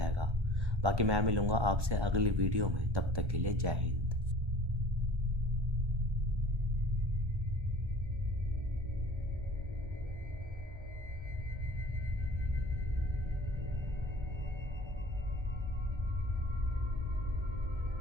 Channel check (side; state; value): left; late; 1.3 ms